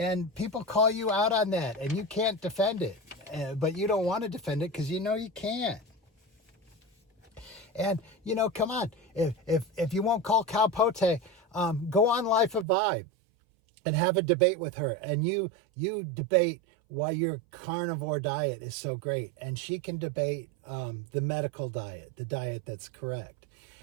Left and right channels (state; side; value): drops out; left; at 12.7 s